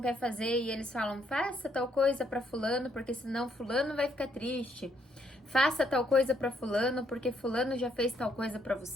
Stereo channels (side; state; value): both; normal; correlation 0.72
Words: quer fazer e eles falam, faça tal coisa pra fulano, porque senão fulano vai ficar triste. Faça tal coisa pra fulano, porque fulano já fez tal coisa pra